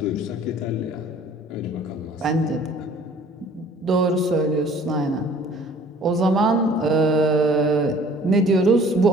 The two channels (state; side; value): normal; both; correlation 0.52